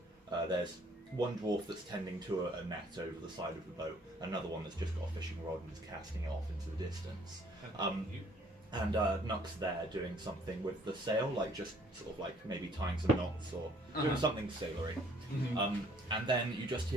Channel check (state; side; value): normal; both; correlation 0.60